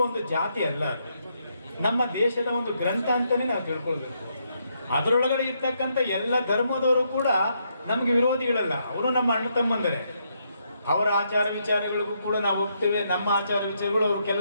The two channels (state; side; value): inverted; both; correlation -0.77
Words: ಒಂದು ಜಾತಿ ಅಲ್ಲ, ನಮ್ಮ ದೇಶದ ಒಂದು ಗ್ರಂಥ ಅಂತಾನೆ ನಾವು ತಿಳ್ಕೊಳ್ಬೇಕು. ಅದರೊಳಗಡೆ ಇರ್ತಕ್ಕಂಥ ಎಲ್ಲ ಧರ್ಮದವರು ಕೂಡ ನಮ್ಗೆ ವಿರೋಧಿಗಳಲ್ಲ, ಅವರು ನಮ್ಮ ಅಣ್ಣ ತಮ್ಮಂದರೆ. ಅವರ ಆಚಾರ ವಿಚಾರಗಳಿಗೂ ಕೂಡ ನಾವು ಹೋಗ್ತೇವೆ, ನಮ್ಮ ಆಚಾರ ವಿಚಾರಗಳು ಅವರು